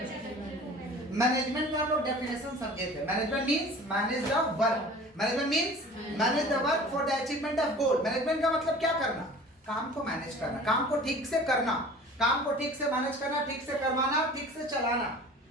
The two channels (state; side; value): normal; both; correlation 0.43